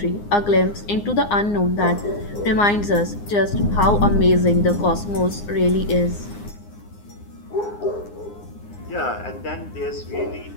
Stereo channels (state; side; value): late; right; 9.7 ms